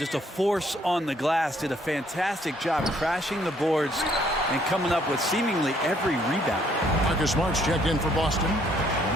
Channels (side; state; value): both; normal; correlation 0.66